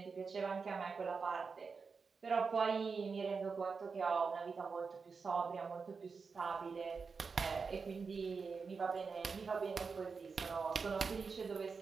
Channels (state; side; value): quieter; left; 5.0 dB